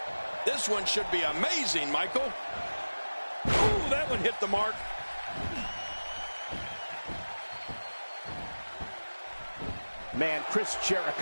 This one should be amazing, Michael. Ooh, that one hit the mark. Man, Chris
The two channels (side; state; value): both; inverted; correlation -1.00